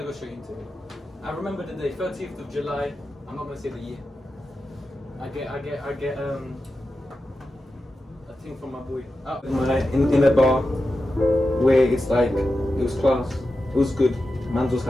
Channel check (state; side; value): normal; both; correlation 0.91